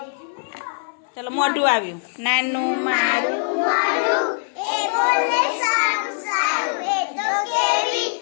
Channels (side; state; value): right; silent; 64 dB below the other